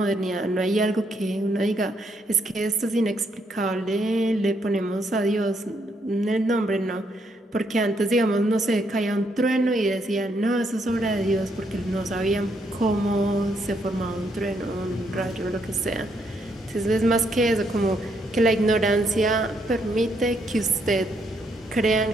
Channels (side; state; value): both; normal; correlation 0.74